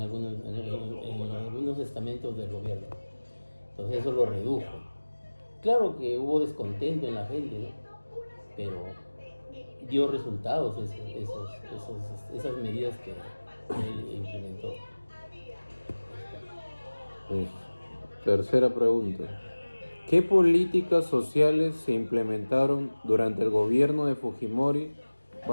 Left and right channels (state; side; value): inverted; both; correlation -1.00